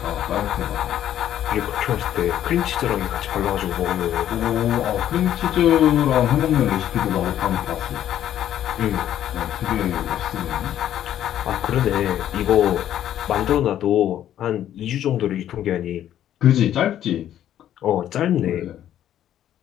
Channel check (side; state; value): right; quieter; 11.3 dB